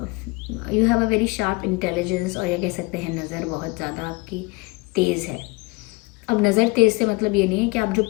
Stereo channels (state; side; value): quieter; right; 25.9 dB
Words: you have a very sharp intelligence, और या कह सकते हैं नज़र बहुत ज़्यादा आपकी तेज़ है। अब नज़र तेज़ से मतलब ये नहीं है कि आप जो